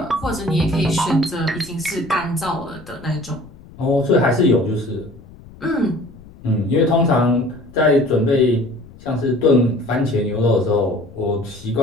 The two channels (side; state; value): left; noise; rumble, 21 dB below the sound